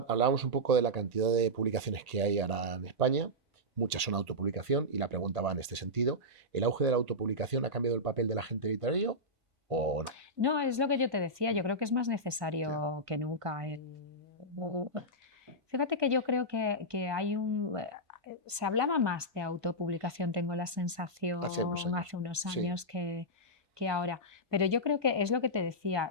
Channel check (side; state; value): left; late; 1.5 ms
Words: un poco de la cantidad de publicaciones que hay ahora en España. Muchas son autopublicación y la pregunta va en este sentido. ¿El auge de la autopublicación ha cambiado el papel del agente literario o no? No, es lo que yo te decía, yo creo que es más necesario que nunca. Fíjate que yo creo que hay se hablaba más de autopublicación, tengo la sensación, Hace unos años. hace unos Sí. años que ahora. Pero yo creo que es lo que te decía,